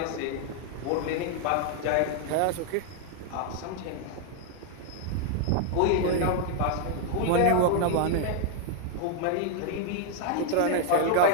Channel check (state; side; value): different; both; correlation 0.00